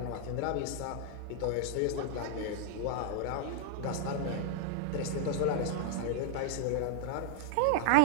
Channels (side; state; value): both; different; correlation 0.00